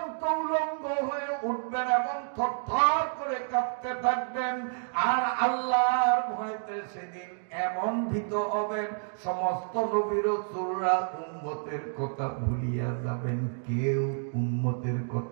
উলঙ্গ হয়ে উঠবেন এবং থরথর করে কাঁপতে থাকবেন। আর আল্লাহর ভয়তে সেদিন এমন ভীত হবেন, সমস্ত নবী রাসূলরা উম্মতের কথা ভুলিয়া যাবেন, কেউ উম্মতের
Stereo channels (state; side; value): silent; left; digital silence